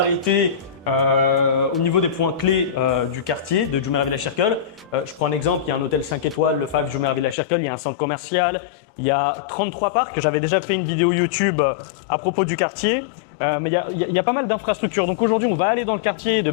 au niveau des points clés du quartier de Jumeirah Village Circle. Je prends un exemple, il y a un hôtel 5 étoiles, le 5 Jumeirah Village Circle, il y a un centre commercial, il y a 33 parcs. J'avais déjà fait une vidéo YouTube à propos du quartier, mais il y a pas mal d'infrastructures. Donc aujourd'hui, on va aller dans le quartier de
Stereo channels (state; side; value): drops out; right; at 7.4 s